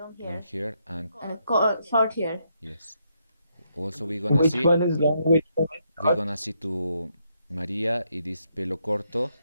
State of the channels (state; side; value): inverted; both; correlation -0.77